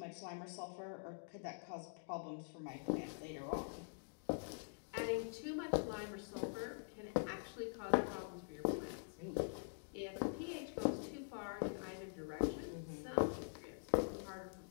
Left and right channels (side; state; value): right; silent; digital silence